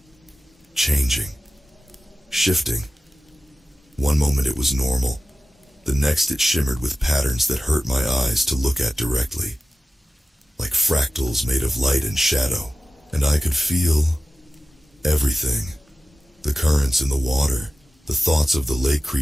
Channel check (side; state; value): both; normal; correlation 0.95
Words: changing, shifting. One moment it was normal. The next it shimmered with patterns that hurt my eyes to look at directly. Like fractals made of light and shadow. And I could feel everything. The currents in the water, the thoughts of the lake